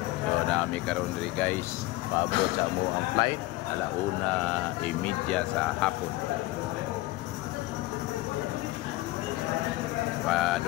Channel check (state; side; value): quieter; right; 18.9 dB